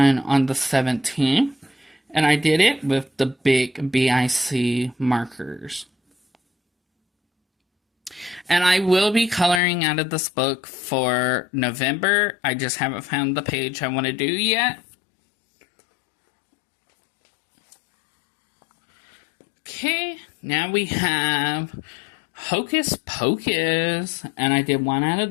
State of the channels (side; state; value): right; drops out; at 9.6 s